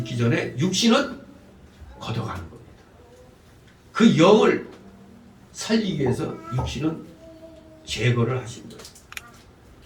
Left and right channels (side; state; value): both; identical; correlation 1.00